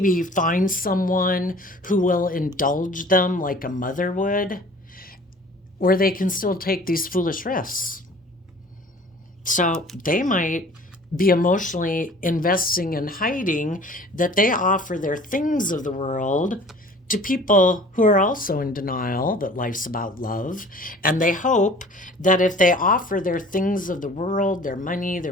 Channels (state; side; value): normal; both; correlation 0.47